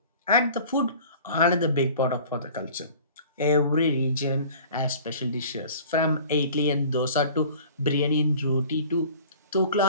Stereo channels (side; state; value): both; inverted; correlation -0.46